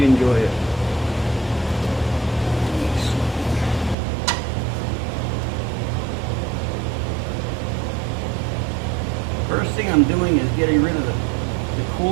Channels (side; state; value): left; drops out; at 4.0 s